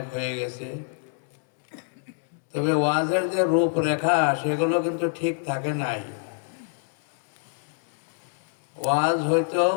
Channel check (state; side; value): silent; right; 61 dB below the other